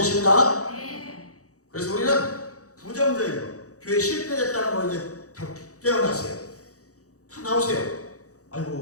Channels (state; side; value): late; right; 0.66 ms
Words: 그래서 우리는 부정적인 거, 교회 실패됐다는 거 이제 다 깨어나세요. 다 나오세요.